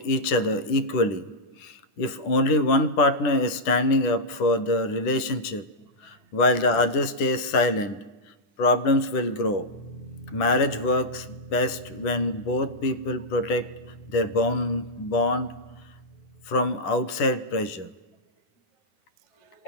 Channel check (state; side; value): late; right; 10 ms